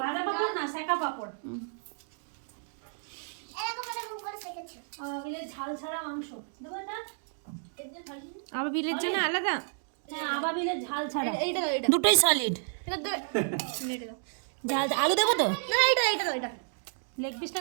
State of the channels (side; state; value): left; silent; digital silence